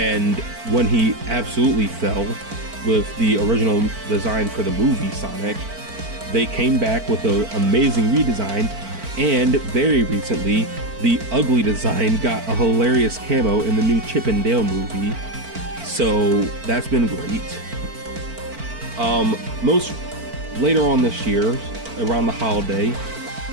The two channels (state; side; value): late; left; 4.5 ms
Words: when he absolutely fell with the original design for the movie Sonic, they came back with an amazing redesign, and very recently, the ugly design got a hilarious camo in the new Chip and Dale movie, so that's been great. Later on this year, around the holiday,